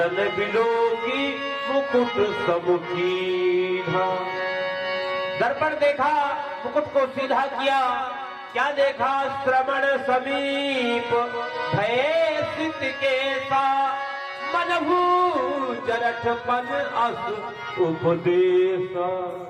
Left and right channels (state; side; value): identical; both; correlation 1.00